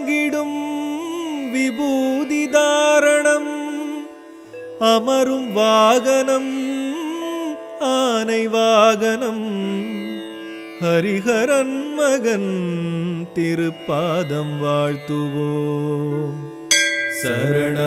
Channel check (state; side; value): identical; both; correlation 1.00